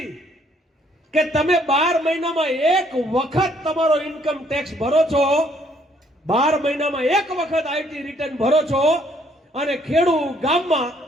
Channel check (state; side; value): normal; both; correlation 0.66